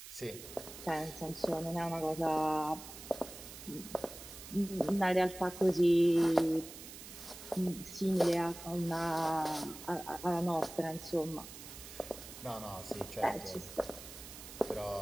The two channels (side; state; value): right; noise; hiss, 14 dB below the sound